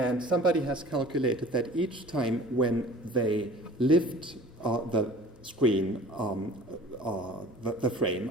somebody has calculated that each time when they lift the screen, the frame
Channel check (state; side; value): normal; both; correlation 0.46